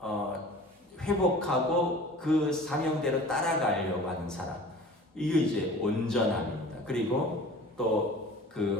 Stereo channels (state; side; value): normal; both; correlation 0.43